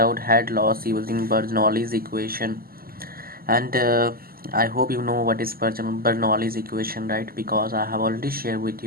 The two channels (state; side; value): late; left; 0.43 ms